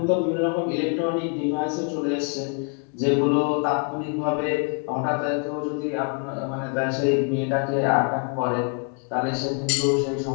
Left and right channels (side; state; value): right; quieter; 39.3 dB